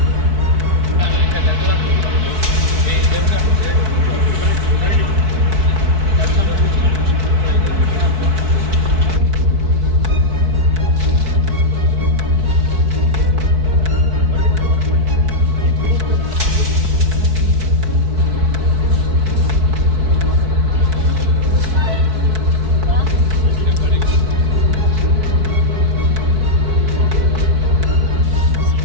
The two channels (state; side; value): late; left; 4.6 ms